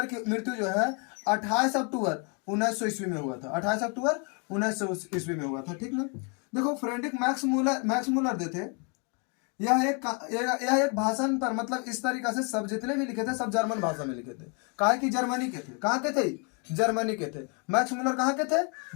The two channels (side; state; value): right; quieter; 36.1 dB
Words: की मृत्यु जो है 28 अक्टूबर 1900 ईस्वी में हुआ था, 28 अक्टूबर 1900 ईस्वी में हुआ था, ठीक ना। देखो फ्रेडरिक मैक्स मूलर जो थे, यह एक भाषण पर, मतलब इस तरीका से सब जितने भी लिखे थे सब जर्मन भाषा में लिखे थे, काहे कि जर्मनी के थे, कहाँ के थे, जर्मनी के थे। मैक्स मूलर कहाँ के थे,